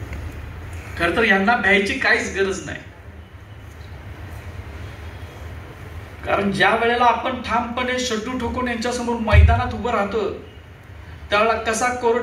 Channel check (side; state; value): both; identical; correlation 1.00